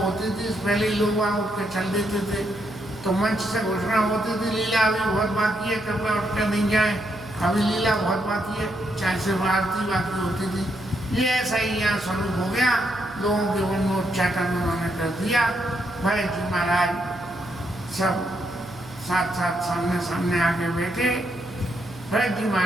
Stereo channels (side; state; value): right; noise; hum, 19 dB below the sound